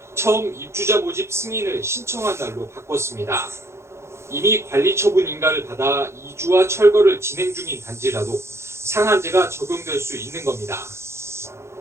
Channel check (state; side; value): late; left; 0.13 ms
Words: 처음 입주자 모집 승인을 신청한 날로 바꿨습니다. 이미 관리 처분 인가를 받아 이주와 철거를 진행 중인 단지라도 상한제가 적용될 수 있는 겁니다.